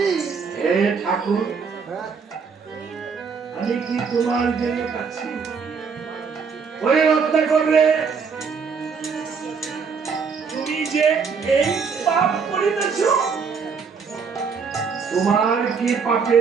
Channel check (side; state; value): left; quieter; 5.7 dB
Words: হে ঠাকুর, আমি কি তোমার জন্য কাঁদছি? ওই রত্নাকর রে, তুমি যে এই পাপ করিতেছ, তোমার কি